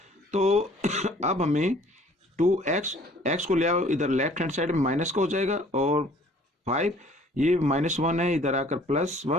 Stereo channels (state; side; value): normal; both; correlation 0.55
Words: तो अब हमें टू एक्स को ले आओ इधर लेफ्ट हैंड साइड में माइनस का हो जाएगा और फाइव ये माइनस वन है, इधर आकर प्लस